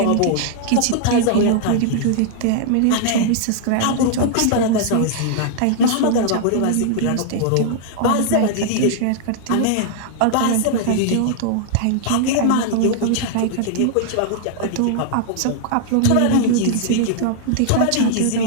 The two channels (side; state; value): both; different; correlation -0.01